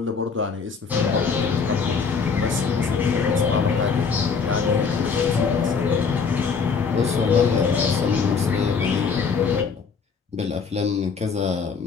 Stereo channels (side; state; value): right; quieter; 5.6 dB